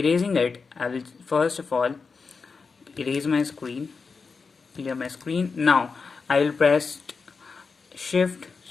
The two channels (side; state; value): right; quieter; 4.8 dB